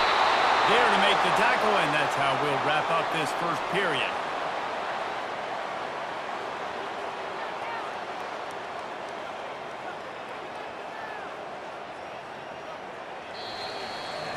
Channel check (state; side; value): identical; both; correlation 1.00